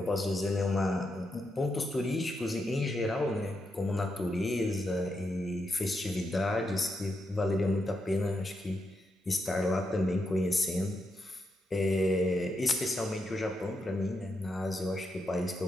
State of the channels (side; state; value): both; normal; correlation 0.83